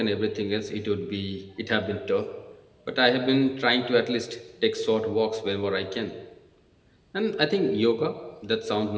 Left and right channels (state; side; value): identical; both; correlation 1.00